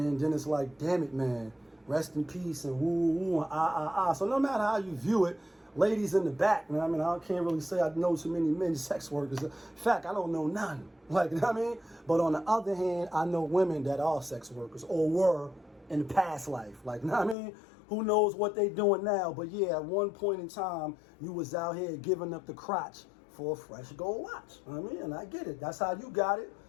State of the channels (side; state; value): right; drops out; at 17.4 s